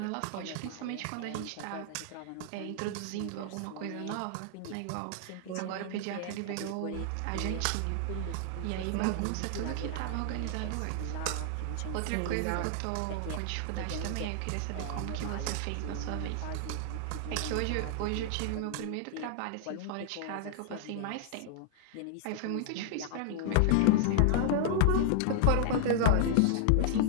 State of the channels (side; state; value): both; different; correlation -0.01